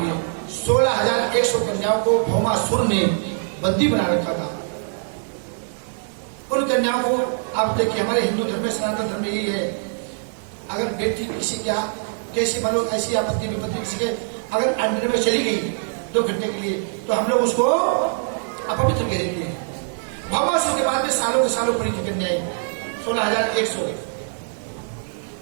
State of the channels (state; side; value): silent; left; 64 dB below the other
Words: 16,100 कन्याओं को भौमासुर ने बंदी बना रखा था उन कन्याओं को आप देखिए हमारे हिंदू धर्म में सनातन धर्म में यही है अगर बेटी किसी क्या कैसी मानो ऐसी आपत्ति विपत्ति किसी के अगर अंडर में चली गई 2 घंटे के लिए तो हम लोग उसको अपवित्र कह देते हैं भौमासुर के बाद में सालों के सालों पड़ी थी कन्याएं 16,100